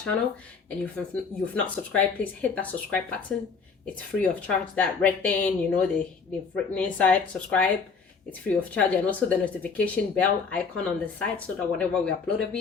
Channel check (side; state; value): right; quieter; 5.3 dB